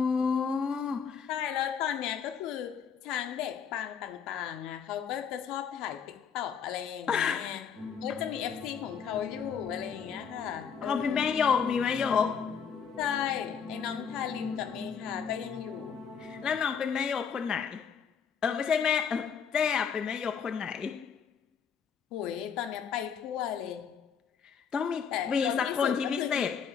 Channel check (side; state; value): right; quieter; 7.0 dB